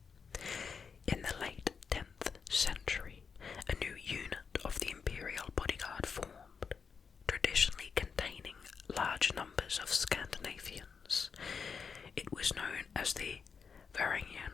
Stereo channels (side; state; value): right; quieter; 5.9 dB